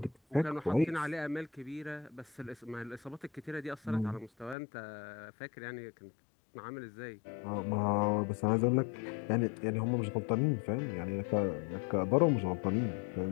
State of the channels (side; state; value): right; drops out; at 4.5 s